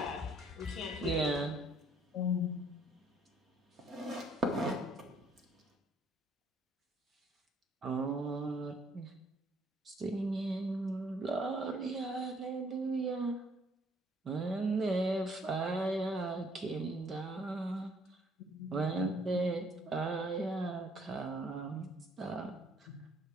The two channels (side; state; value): both; normal; correlation 0.64